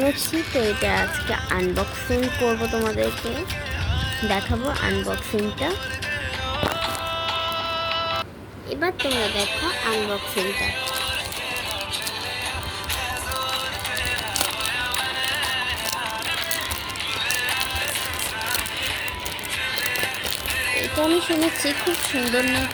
তো এটা আজকে আনবক্সিং করব, তোমাদেরকে দেখাবো আনবক্সিংটা। এবার তোমরা দেখো আনবক্সিংটা। এটা আমি শুনেছি খুব সুন্দর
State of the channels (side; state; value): both; identical; correlation 1.00